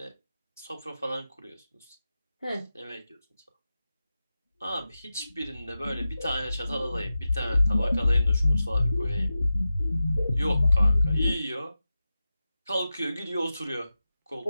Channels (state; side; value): inverted; both; correlation -0.93